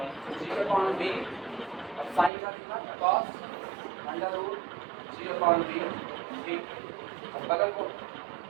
जी अपॉन बी, और साइन का कितना cos अंडर रूट जी अपॉन बी डी, और बगल को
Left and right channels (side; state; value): left; drops out; at 2.3 s